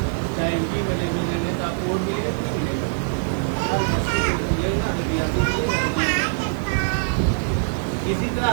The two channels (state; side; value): silent; left; 58 dB below the other